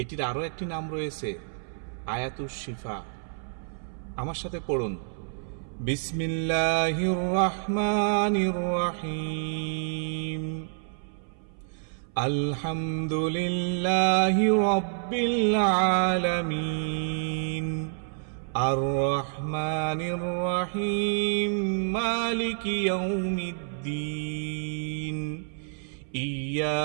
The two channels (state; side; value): silent; left; 59 dB below the other